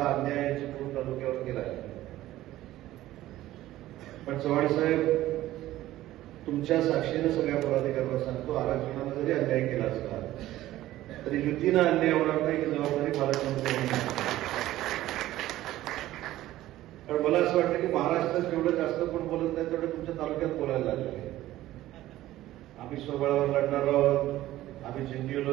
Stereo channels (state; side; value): quieter; left; 15.1 dB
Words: अन्याय चिपळूण तालुक्यावर केला आहे. पण चव्हाण साहेब, तुमच्या साक्षीनं सगळ्या पदाधिकाऱ्यांना सांगतो, आरक्षणाला जरी अन्याय केला असला तरी युतीनं अन्याय होणार नाही ही जबाबदारी पालकमंत्री. कारण मला असं वाटतं की महाराष्ट्रात जेवढं जास्त कोण बोलत नाही तेवढं तुमच्या तालुक्यात बोलायला लागले. आम्ही स्वबळावर लढणार आहोत, आम्ही